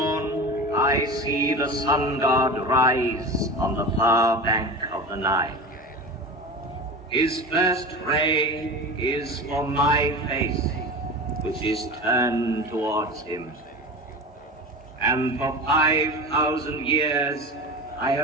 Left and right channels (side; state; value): both; normal; correlation 0.30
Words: I see the sun god rise on the far bank of the Nile. His first ray is for my face, which is turned towards him. And for 5,000 years, I